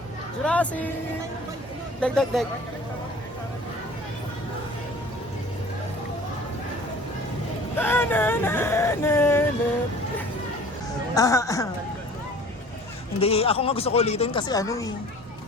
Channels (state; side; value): normal; both; correlation 0.46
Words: Jurassic! Dek, dek, dek. Hindi, ako nga gusto ko ulitin kasi ano eh.